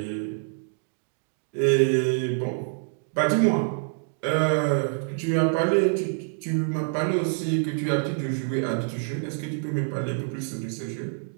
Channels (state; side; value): silent; left; digital silence